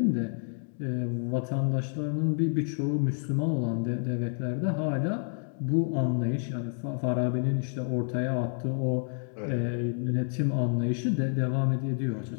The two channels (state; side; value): silent; right; 58 dB below the other